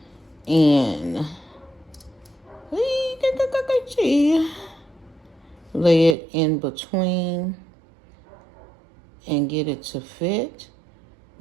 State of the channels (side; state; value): left; drops out; at 6.2 s